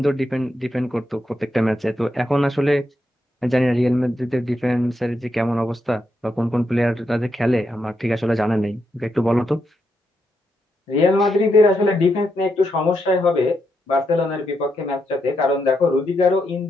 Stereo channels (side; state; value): both; normal; correlation 0.82